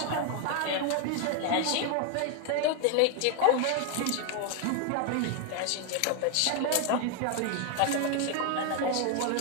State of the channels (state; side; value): different; both; correlation 0.01